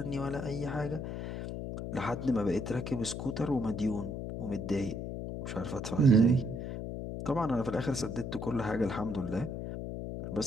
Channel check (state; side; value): noise; left; hum, 5 dB below the sound